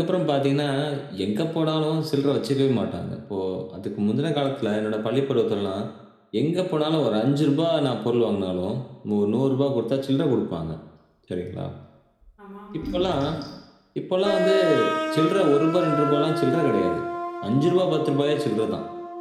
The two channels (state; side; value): identical; both; correlation 1.00